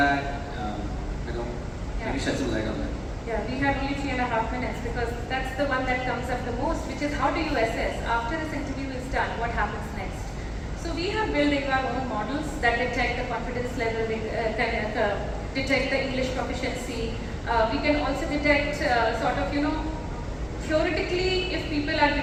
Can you shed some light on that? Yeah, we have only 3.5 minutes because that's the one that comes up the most, which is how do you assess after this interview is done, what happens next? So we have built our own models that detect the confidence level, detect the English proficiency. We can also detect theoretically if people are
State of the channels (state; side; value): identical; both; correlation 1.00